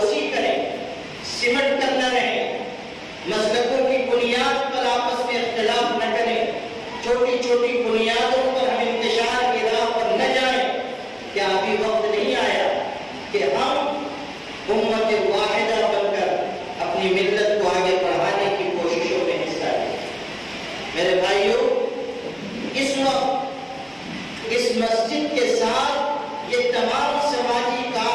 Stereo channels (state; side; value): identical; both; correlation 1.00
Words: کریں، سمٹ کر نہ رہیں، مسلکوں کی بنیاد پر آپس میں اختلاف نہ کریں، چھوٹی چھوٹی بنیادوں پر ہم انتشار کی راہ پر نہ جائیں۔ کیا ابھی وقت نہیں آیا کہ ہم امت واحدہ بن کر اپنی ملت کو آگے بڑھانے کی کوششوں میں حصہ لیں؟ میرے بھائیوں، اس وقت اس مسجد کے ساتھ یہ تمام سماجی